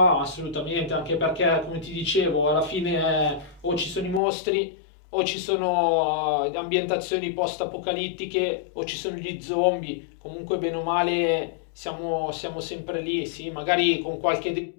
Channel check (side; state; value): right; drops out; at 4.2 s